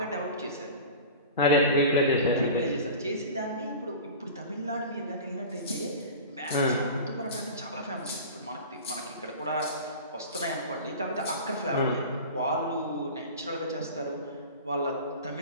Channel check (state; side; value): inverted; both; correlation -0.34